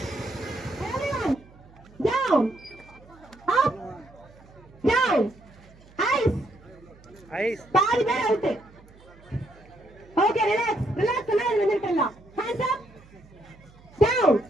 Down, up, down, பாதி பேர் அவுட். ஓகே ரிலாக்ஸ் ரிலாக்ஸ் எல்லாம் வந்துட்டலாம். Hands up down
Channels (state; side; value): noise; right; hum, 25 dB below the sound